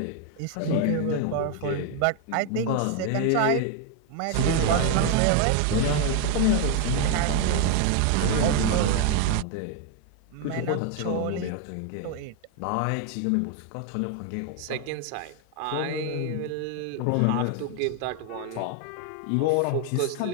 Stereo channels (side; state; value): both; different; correlation 0.01